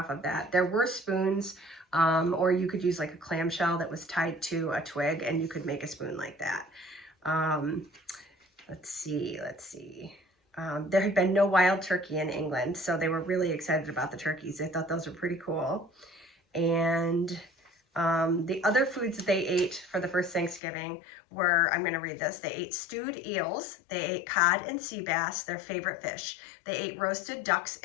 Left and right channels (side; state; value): right; drops out; at 20.6 s